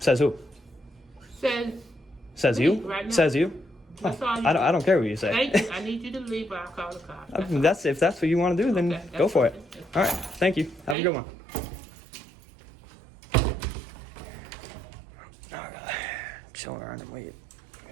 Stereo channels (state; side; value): drops out; left; at 11.0 s